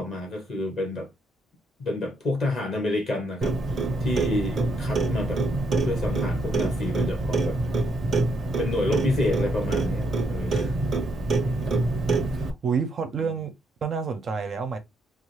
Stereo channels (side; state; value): both; normal; correlation 0.74